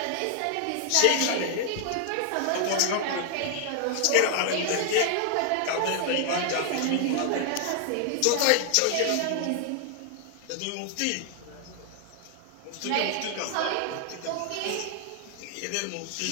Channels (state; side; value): different; both; correlation 0.00